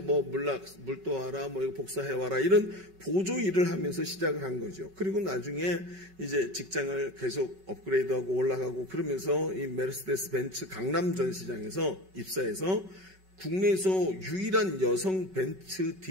뭐 물 떠와라, 뭐 이거 복사해와라 이런 보조 일을 하면서 시작을 한 거죠. 그리고 나중에 이제 직장을 계속 업그레이드하고 올라가고 그러면서 이 메르세데스 벤츠 강남 전시장에서 입사해서 국내에서 유일한 여성 벤츠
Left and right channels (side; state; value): left; late; 5.3 ms